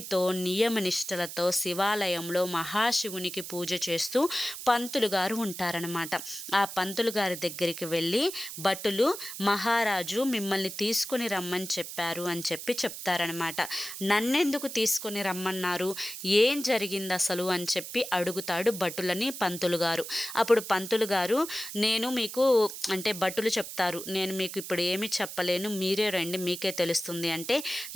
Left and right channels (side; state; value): right; noise; hiss, 9 dB below the sound